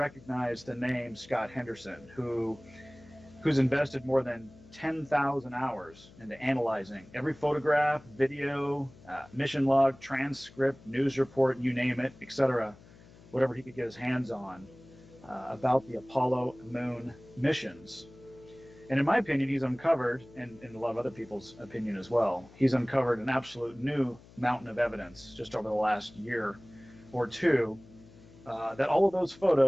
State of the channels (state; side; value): noise; left; hum, 23 dB below the sound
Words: the name Scott Henderson, who's invested more than 10,000 hours into analyzing every photograph, video, mission log, transcript, news report, you name it, etc., whatever he could get his hands on about the Apollo moon missions. And in my opinion, he's uncovered, and in a lot of other people's opinion as well, he's uncovered an absolute new mountain of evidence just over the last year or two that all of those